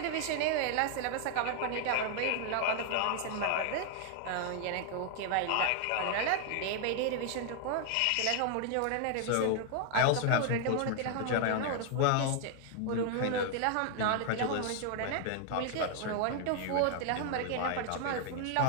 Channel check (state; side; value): different; both; correlation 0.00